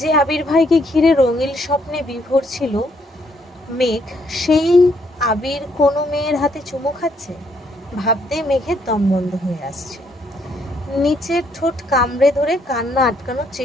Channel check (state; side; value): normal; both; correlation 0.70